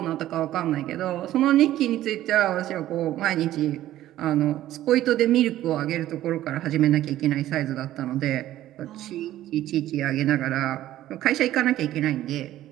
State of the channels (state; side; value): quieter; left; 13.7 dB